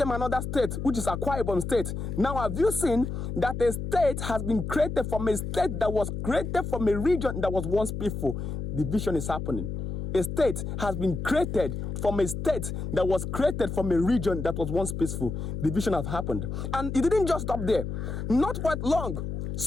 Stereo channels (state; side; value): noise; left; hum, 4 dB below the sound